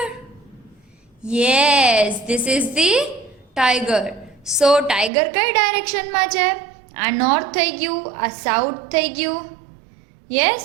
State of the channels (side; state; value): left; drops out; at 5.1 s